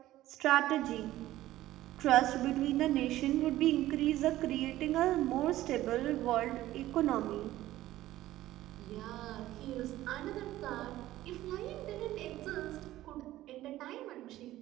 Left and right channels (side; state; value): left; quieter; 15.1 dB